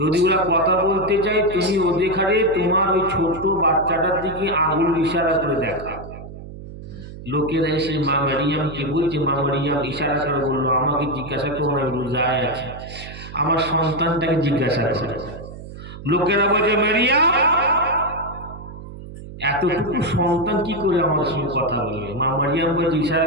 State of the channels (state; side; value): noise; right; hum, 13 dB below the sound